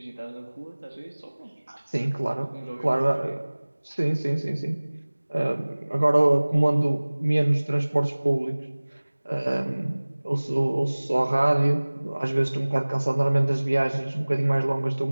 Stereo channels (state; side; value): inverted; both; correlation -1.00